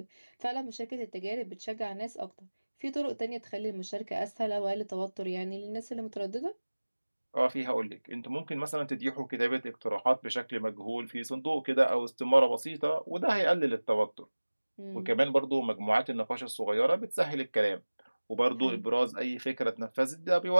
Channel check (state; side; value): inverted; both; correlation -1.00